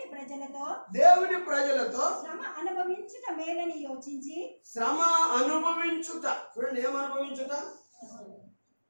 దేవుని ప్రజలతో శ్రమ అనుభవించుట మేలని యోచించి చూడండి,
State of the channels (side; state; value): both; inverted; correlation -1.00